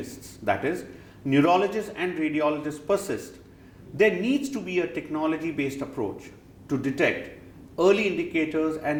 that is, neurologists and radiologists persist, there needs to be a technology-based approach to detect early indicators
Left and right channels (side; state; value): both; identical; correlation 1.00